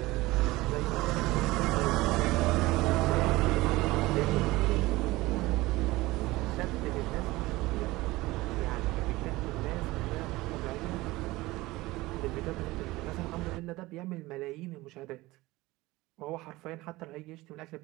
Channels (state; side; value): quieter; left; 19.7 dB